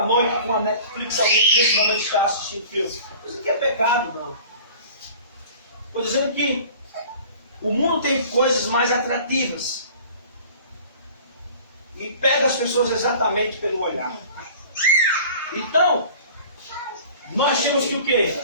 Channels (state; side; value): inverted; both; correlation -0.45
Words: noite com a Netflix, alguém que nesse momento está assistindo filme? Isso aqui é pecado, não. Estou dizendo que o mundo tem coisas mais atrativas. E pega as pessoas exatamente pelo olhar. Então, nós temos que o quê?